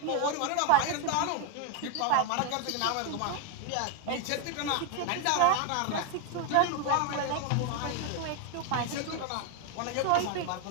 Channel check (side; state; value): both; different; correlation 0.01